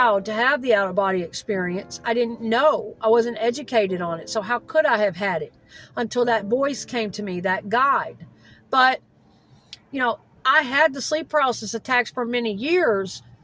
to have the out-of-body experience. I didn't know. I wasn't educated on it. So how could I have had it until that voice came to me, that guide? But, I had the sleep paralysis attacks for many years,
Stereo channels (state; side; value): identical; both; correlation 1.00